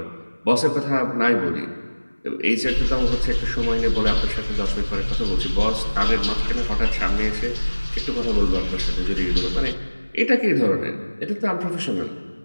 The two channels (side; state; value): both; inverted; correlation -1.00